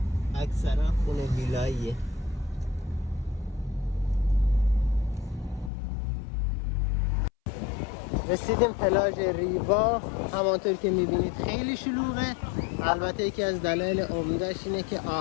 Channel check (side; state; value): right; drops out; at 5.7 s